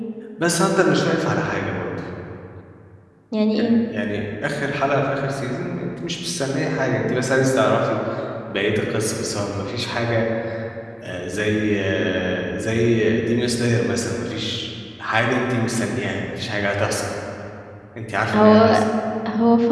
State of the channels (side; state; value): both; identical; correlation 1.00